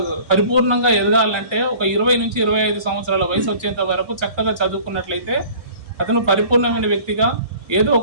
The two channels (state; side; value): late; left; 1.3 ms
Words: పరిపూర్ణంగా ఎదగాలంటే ఒక 20 నుంచి 25 సంవత్సరాల వయసు వచ్చేంత వరకు చక్కగా చదువుకున్నట్లయితే అతను పరిపూర్ణమైన వ్యక్తిగా ఏదో